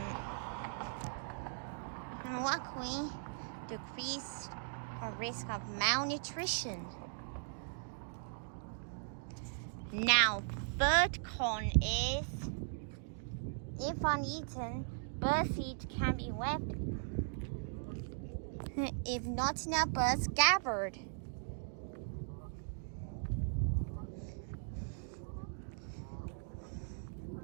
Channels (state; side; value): silent; left; digital silence